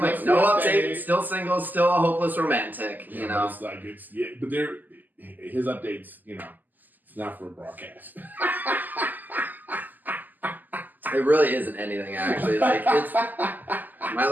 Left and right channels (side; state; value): left; late; 0.085 ms